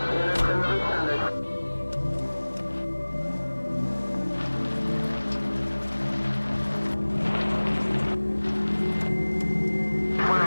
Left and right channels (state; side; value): inverted; both; correlation -1.00